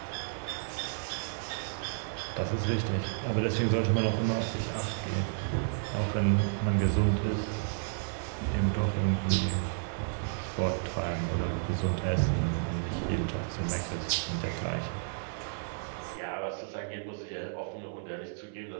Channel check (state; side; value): silent; left; 57 dB below the other